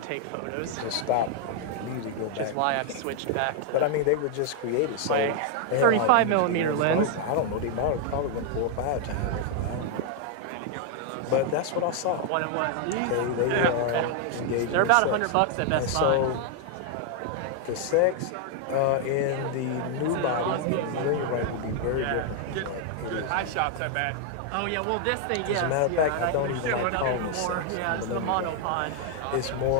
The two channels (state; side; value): different; both; correlation 0.00